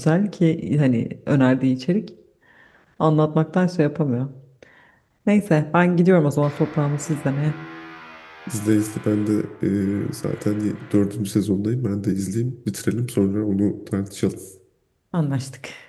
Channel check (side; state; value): both; identical; correlation 1.00